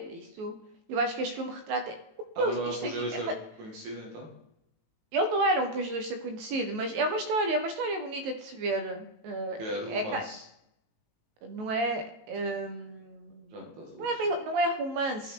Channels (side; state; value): left; late; 19 ms